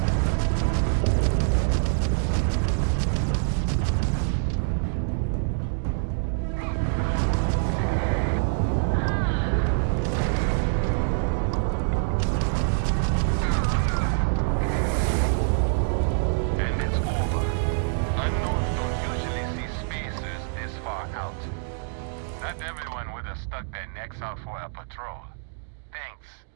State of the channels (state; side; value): silent; left; digital silence